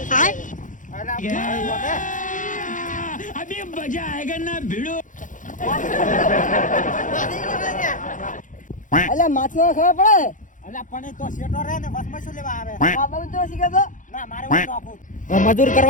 અલા अभी मजा आएगा ना भिड़ो. અલ્યા માથે ખબર પડે. અલા પણ એ તો શેટો રહે ને વસમાં શું લેવા આવે? આ બાબુ તો શીખે તો ના મારે હું નોખું. મજૂર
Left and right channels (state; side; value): late; right; 0.37 ms